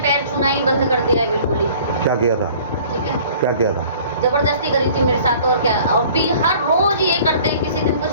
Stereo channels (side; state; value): both; inverted; correlation -0.50